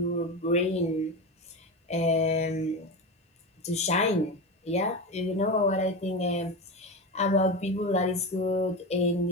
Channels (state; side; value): normal; both; correlation 0.21